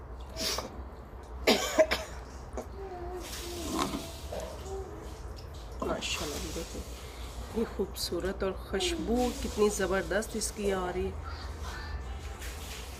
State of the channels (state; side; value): identical; both; correlation 1.00